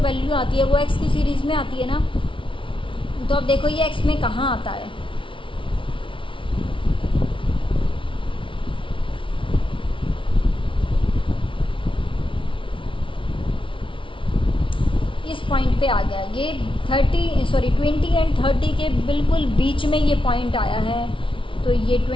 आती है वो एक्स की सीरीज़ में आती है ना। तो अब देखो ये एक्स में कहाँ आता है? इस पॉइंट पे आ गया। ये 20 एंड 30 के बिल्कुल बीच में ये पॉइंट आया है, तो ये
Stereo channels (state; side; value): late; right; 0.25 ms